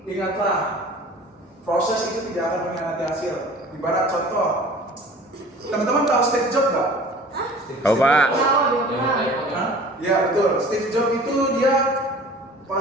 Ingatlah, proses itu tidak akan mengkhianati hasil. Ibarat contoh, teman-teman tahu Steve Jobs nggak? Hah? Tahu Pak. Tahu dia yang pernah. iPhone ya. Hah? Iya betul. Steve Jobs itu dia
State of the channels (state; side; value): normal; both; correlation 0.45